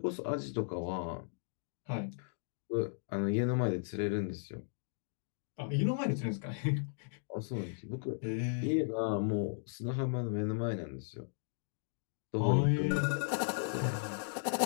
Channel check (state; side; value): silent; right; digital silence